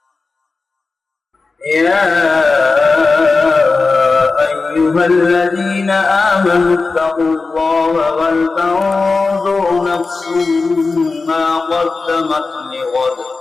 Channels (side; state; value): right; quieter; 4.0 dB